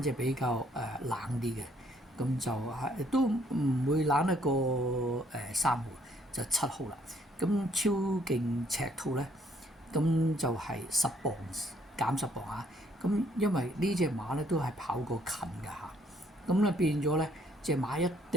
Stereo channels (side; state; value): both; normal; correlation 0.66